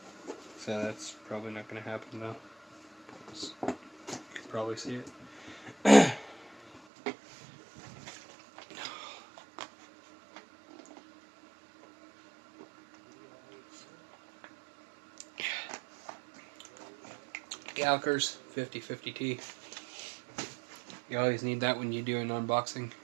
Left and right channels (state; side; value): drops out; left; at 6.9 s